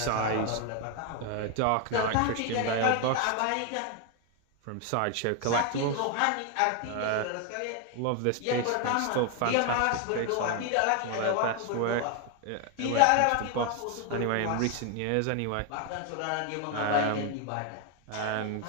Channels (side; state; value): both; different; correlation 0.01